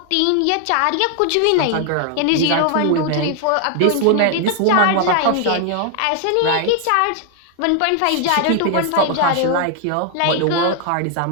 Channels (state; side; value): different; both; correlation 0.00